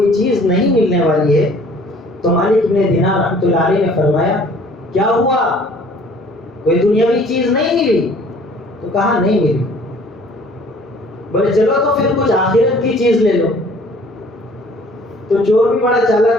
چیز نہیں ملنے والی ہے تو مالک بن دینار رحمۃ اللہ علیہ نے فرمایا کیا ہوا؟ کوئی دنیاوی چیز نہیں ملی؟ تو کہا نہیں ملی. بولے چلو تو پھر کچھ آخرت کی چیز لے لو. تو چور بھی بڑا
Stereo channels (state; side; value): normal; both; correlation 0.54